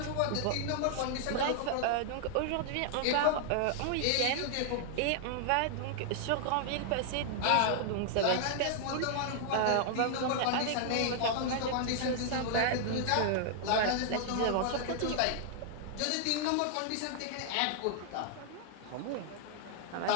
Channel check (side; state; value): both; different; correlation -0.01